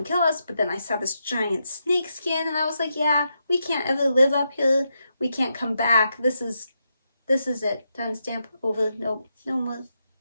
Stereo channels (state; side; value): inverted; both; correlation -0.84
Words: kill us. But then I saw this giant snake skin, and I was like, yeah, we can't ever live up here. We can't come back. This is it. Done, stamp, over. Nope, no more.